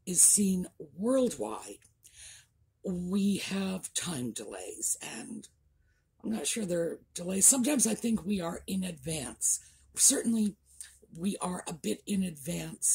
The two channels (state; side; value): identical; both; correlation 1.00